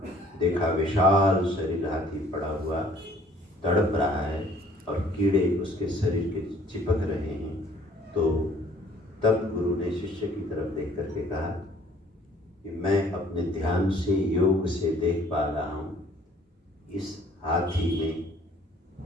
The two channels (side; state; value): both; normal; correlation 0.57